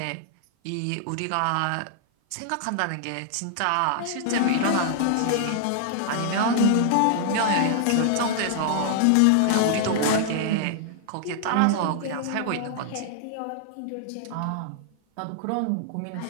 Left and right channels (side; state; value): both; different; correlation -0.01